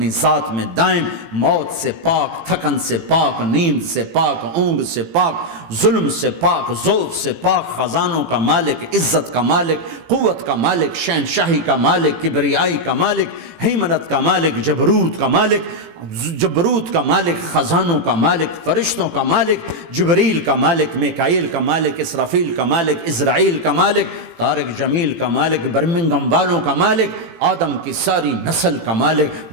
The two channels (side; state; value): left; late; 18 ms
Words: ذات میں دائم، موت سے پاک، تھکن سے پاک، نیند سے پاک، اونگ سے پاک، ظلم سے پاک، ذوق سے پاک، خزانوں کا مالک، عزت کا مالک، قوت کا مالک، شہنشاہی کا مالک، کبریائی کا مالک، ہیمنت کا مالک، جبروت کا مالک، جبروت کا مالک، خزانوں کا مالک، فرشتوں کا مالک، جبریل کا مالک، میکائیل کا مالک، اسرافیل کا مالک، اسرائیل کا مالک، طارق جمیل کا مالک، برمنگم والوں کا مالک، آدم کی ساری نسل کا مالک،